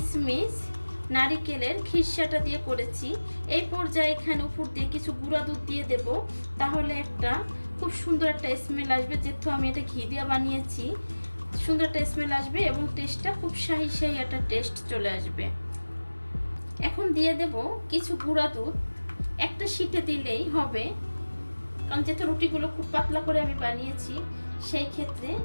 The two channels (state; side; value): inverted; both; correlation -1.00